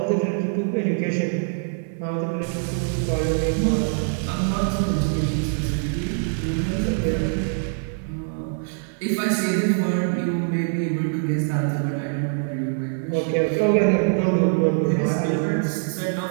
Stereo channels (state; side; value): silent; left; 61 dB below the other